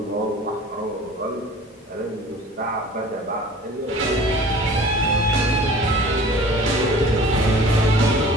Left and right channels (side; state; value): both; normal; correlation 0.45